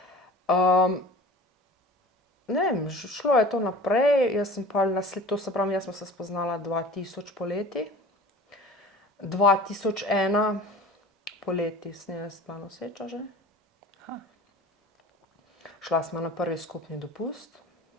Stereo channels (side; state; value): both; normal; correlation 0.40